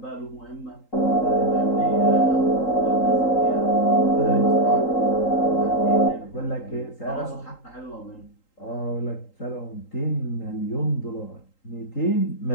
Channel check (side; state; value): right; late; 3.8 ms